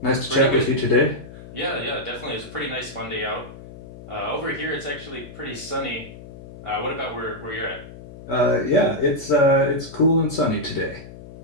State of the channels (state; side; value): noise; left; hum, 16 dB below the sound